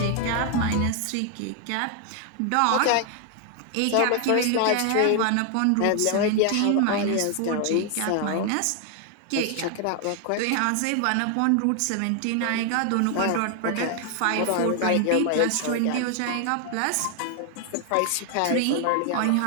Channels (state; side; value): different; both; correlation 0.00